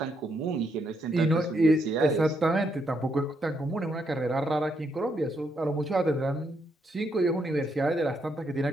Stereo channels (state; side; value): normal; both; correlation 0.77